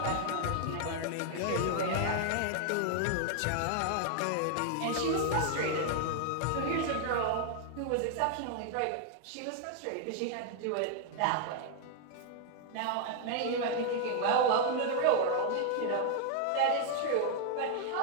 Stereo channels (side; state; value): both; different; correlation 0.00